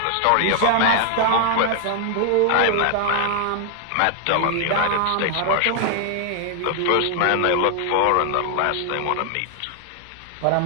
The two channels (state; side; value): different; both; correlation 0.00